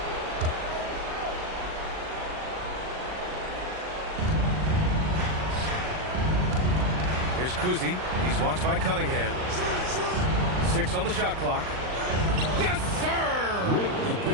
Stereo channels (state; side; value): late; left; 39 ms